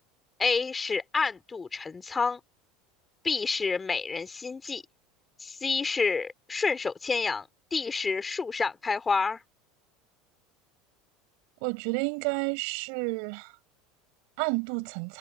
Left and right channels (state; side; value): normal; both; correlation 0.72